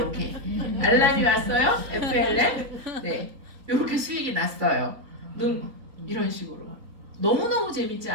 알람이 왔어요. FLM. 네. 요렇게 수익이 났어요. 이런 식으로. 너무너무 재밌지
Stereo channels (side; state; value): left; late; 3.9 ms